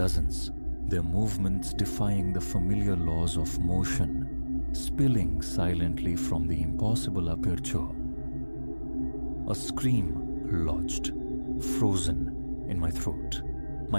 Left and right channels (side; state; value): both; inverted; correlation -1.00